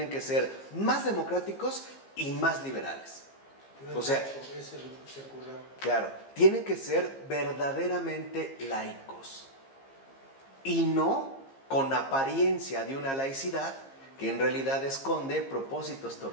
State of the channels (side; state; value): right; late; 15 ms